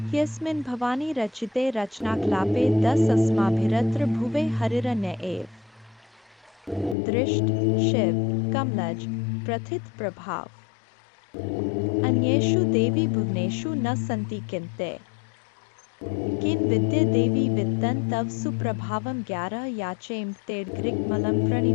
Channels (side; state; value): right; drops out; at 7.0 s